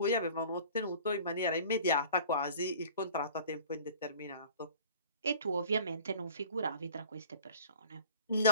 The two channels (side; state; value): both; inverted; correlation -0.42